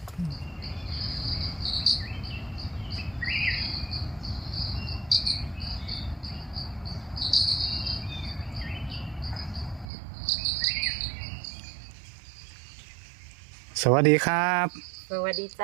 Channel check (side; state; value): left; drops out; at 9.9 s